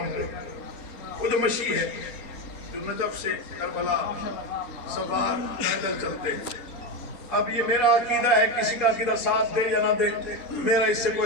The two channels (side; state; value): right; late; 4.3 ms